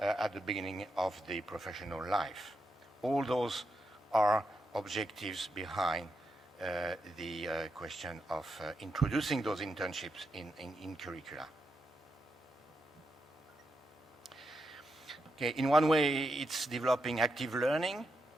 the beginning of the professional life. All those are objectives behind the question of introducing those internships in curricula. Okay, in one way, it's developing active learning,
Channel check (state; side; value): normal; both; correlation 0.84